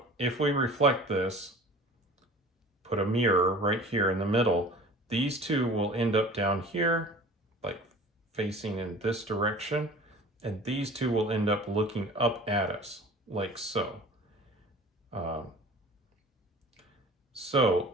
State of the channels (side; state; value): both; normal; correlation 0.42